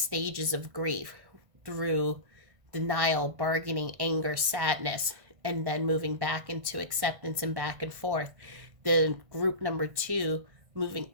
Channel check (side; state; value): left; late; 1.5 ms